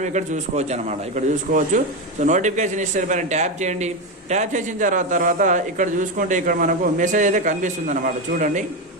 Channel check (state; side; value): normal; both; correlation 0.12